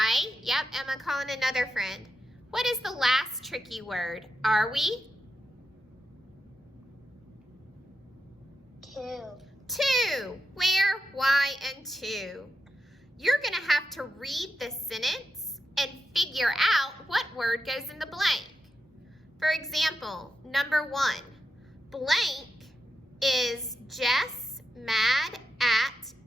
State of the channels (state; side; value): normal; both; correlation 0.87